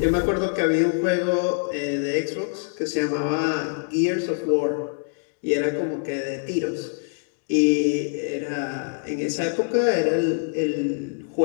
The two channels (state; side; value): silent; right; 62 dB below the other